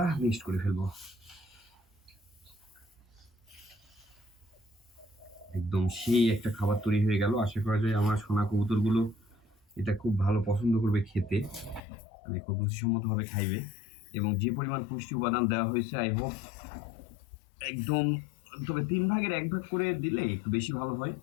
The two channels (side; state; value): right; drops out; at 11.8 s